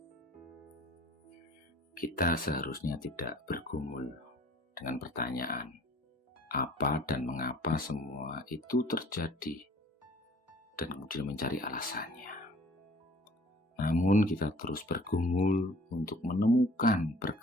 Kita seharusnya tidak bergumul dengan pertanyaan apa dan mengapa semua itu terjadi dan kemudian mencari alasannya. Namun kita terus bergumul untuk menemukan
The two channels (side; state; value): both; normal; correlation 0.51